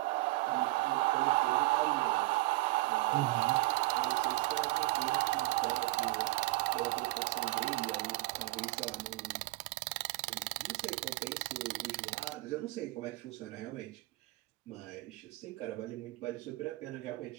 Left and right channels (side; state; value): left; quieter; 20.7 dB